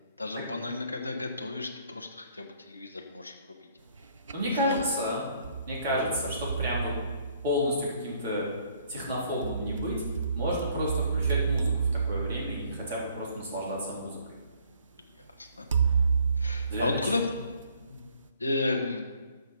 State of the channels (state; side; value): inverted; both; correlation -0.63